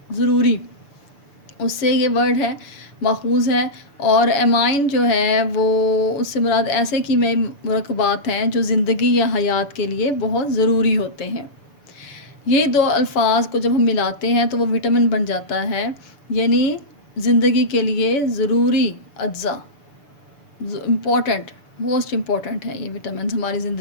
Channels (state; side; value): late; right; 7.0 ms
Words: ضروری، اس سے یہ ورڈ ہے ماخوذ ہے، اور ایمائن جو ہے وہ اس سے مراد ایسے کیمیائی مرکبات ہیں جو زندگی یا حیات کے لیے بہت ضروری ہوتے ہیں۔ یہ دو الفاظ کو جب ہم ملاتے ہیں تو وہ وٹامن بن جاتا ہے، یعنی زندگی کے لیے ضروری اجزاء، امپورٹنٹ، موسٹ امپورٹنٹ ہیں یہ وٹامنز ہماری